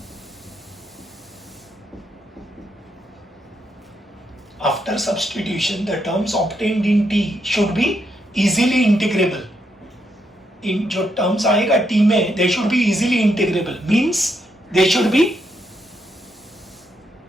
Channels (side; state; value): both; normal; correlation 0.79